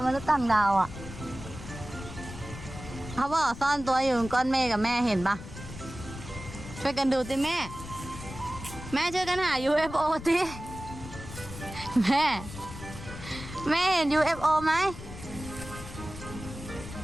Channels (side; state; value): left; noise; rumble, 12 dB below the sound